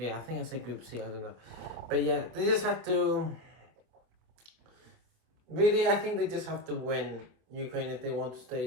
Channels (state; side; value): late; left; 25 ms